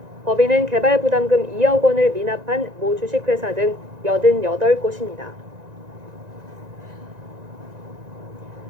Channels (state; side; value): late; left; 1.9 ms